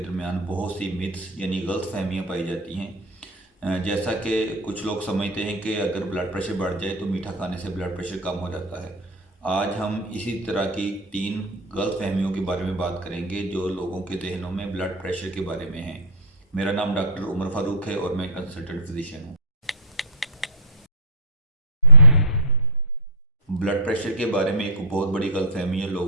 बहुत सी मिथ्स यानी गलत फहमियाँ पाई जाती हैं। जैसा कि कुछ लोग समझते हैं कि अगर ब्लड प्रेशर बढ़ जाए तो मीठा खाने से ब्लड प्रेशर कम हो जाता है। आज हम इसी तरह की 3 गलत फहमियों के बारे में बात करेंगे जो लोगों के जहनों में ब्लड प्रेशर के बारे में है। मेरा नाम डॉक्टर उमर फारूक है और मैं कंसल्टेंट फिजिशियन हूँ। ब्लड प्रेशर के बारे में एक बहुत बड़ी गलतफहमी है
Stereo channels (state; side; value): normal; both; correlation -0.09